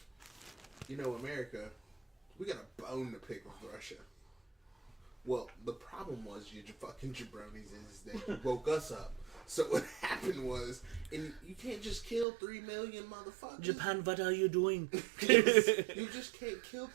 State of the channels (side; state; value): left; drops out; at 12.2 s